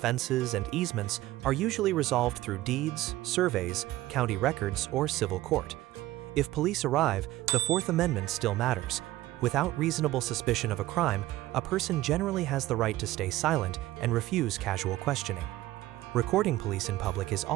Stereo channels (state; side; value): quieter; left; 16.5 dB